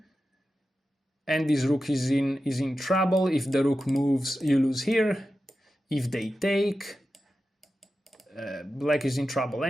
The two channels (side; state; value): both; normal; correlation 0.92